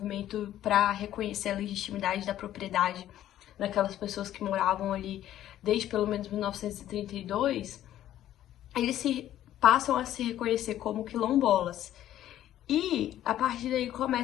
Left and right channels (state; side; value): quieter; right; 12.4 dB